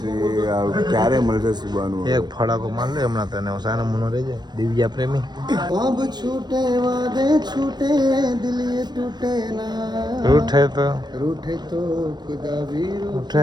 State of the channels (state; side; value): late; left; 0.21 ms